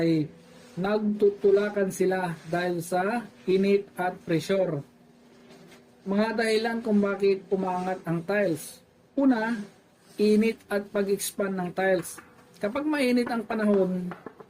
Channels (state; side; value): identical; both; correlation 1.00